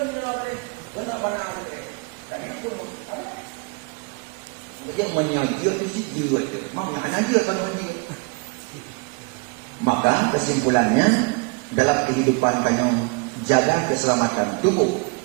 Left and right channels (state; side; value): quieter; left; 31.2 dB